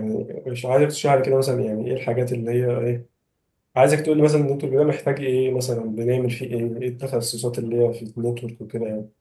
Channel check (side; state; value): both; identical; correlation 1.00